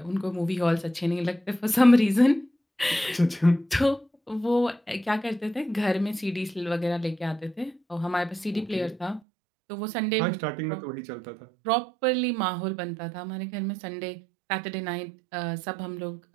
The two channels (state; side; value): drops out; left; at 9.2 s